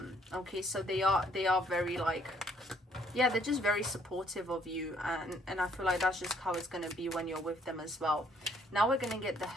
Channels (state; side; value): normal; both; correlation 0.65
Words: Okay, so they are very, like, yeah, they're just very supportive of you, and I feel like that's just how it's going to be when you're with them as well. Now we're going to get the